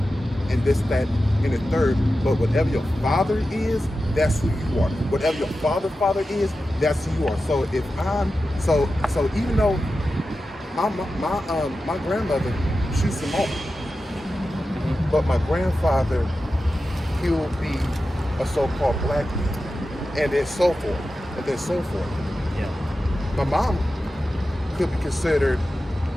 and this, that, and the third. But whatever your father is, that's who you are. Whatever your father is, that's who you are. So if I'm so even though my grandmother, she's Samoan, but my grandfather, he'll be a so-called black man. And then so forth. Yeah. My mom could be considered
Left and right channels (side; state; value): both; normal; correlation 0.92